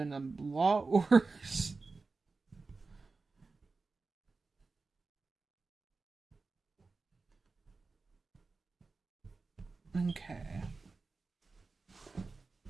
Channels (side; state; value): left; quieter; 4.0 dB